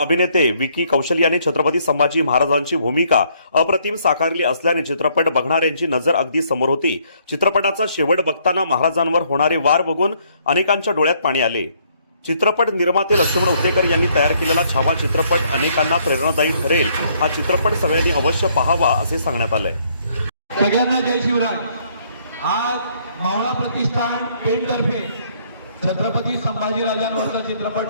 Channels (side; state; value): both; inverted; correlation -0.67